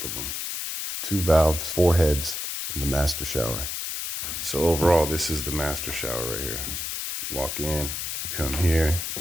of them. 2 valves, 4 heads in the master shower. So overall, this is the master shower right here. Walk in, come here.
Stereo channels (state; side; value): noise; left; hiss, 4 dB below the sound